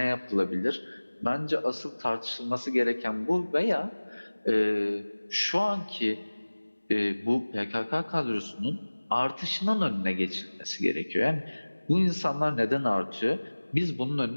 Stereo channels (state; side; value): inverted; both; correlation -1.00